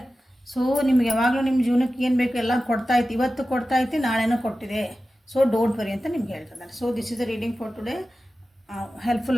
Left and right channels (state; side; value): normal; both; correlation 0.94